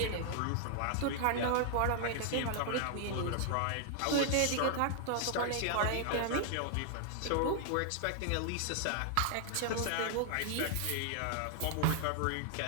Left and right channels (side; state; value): both; different; correlation 0.00